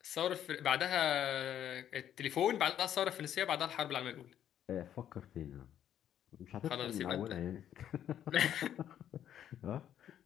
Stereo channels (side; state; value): right; quieter; 10.4 dB